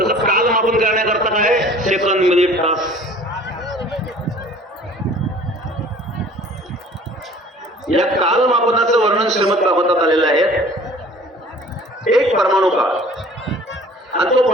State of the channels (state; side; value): normal; both; correlation 0.49